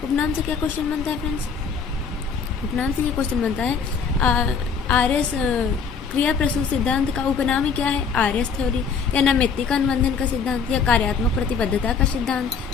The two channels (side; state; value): right; quieter; 5.8 dB